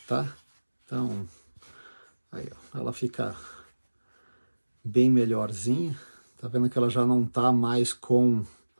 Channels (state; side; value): inverted; both; correlation -1.00